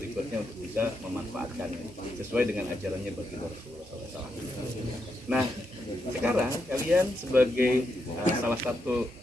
untuk bisa memanfaatkannya sesuai dengan ajarannya baginda Rasulullah SAW. Nah, sekarang kalian sebagai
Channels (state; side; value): normal; both; correlation 0.82